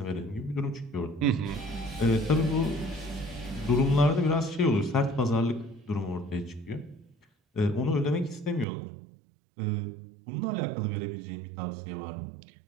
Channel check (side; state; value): left; drops out; at 8.7 s